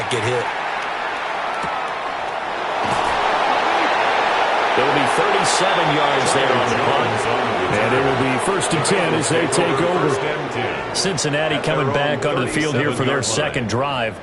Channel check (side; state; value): both; identical; correlation 1.00